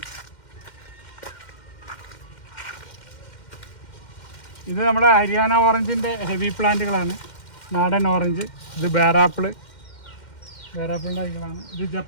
ഇത് നമ്മുടെ ഹരിയാന ഓറഞ്ചിൻ്റെ ഹെവി പ്ലാന്റുകളാണ്. നാടൻ ഓറഞ്ച്. ഇത് ബേറാപ്പിളിൻ്റെ തൈകളാണ്. ഇത്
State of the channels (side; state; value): right; late; 2.1 ms